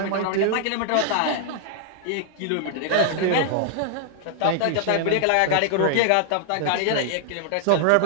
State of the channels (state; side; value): different; both; correlation -0.01